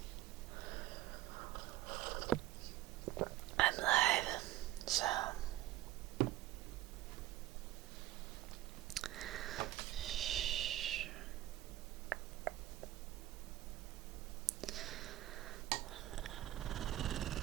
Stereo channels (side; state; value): left; quieter; 14.9 dB